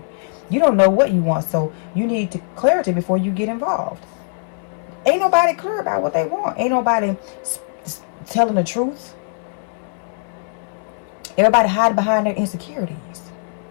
You don't know what you want, so you need clarity before you get involved. Ain't nobody clear about what they want. Ain't nobody telling the truth. Everybody hiding behind their insecurities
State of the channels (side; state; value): right; silent; 63 dB below the other